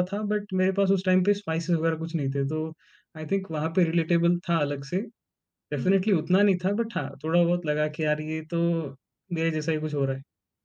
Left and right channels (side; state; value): both; identical; correlation 1.00